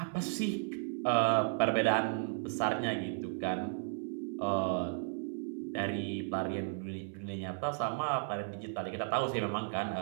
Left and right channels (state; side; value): silent; left; 55 dB below the other